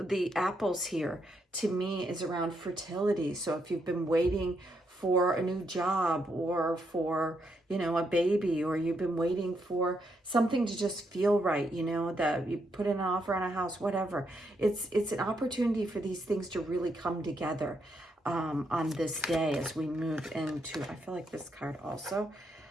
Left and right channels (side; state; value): both; normal; correlation 0.78